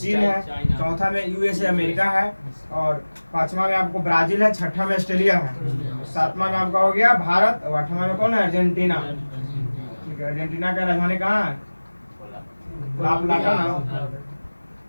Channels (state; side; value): inverted; both; correlation -1.00